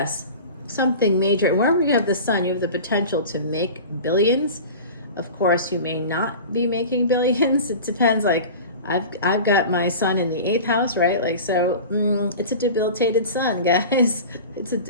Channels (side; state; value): both; inverted; correlation -0.35